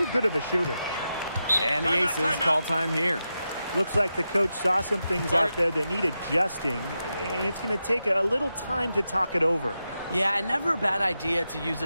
good of a shooter. And the Aces call time here. Looks like the coach saw some things out there that need adjusting, and it's going to take a little time to talk it over. Yeah, and never a bad idea to use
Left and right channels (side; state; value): both; inverted; correlation -0.89